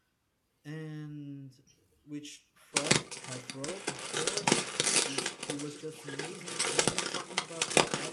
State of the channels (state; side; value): identical; both; correlation 1.00